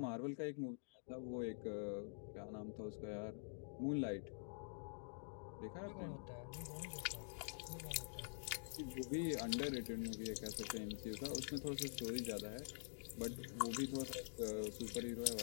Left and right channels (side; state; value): right; silent; digital silence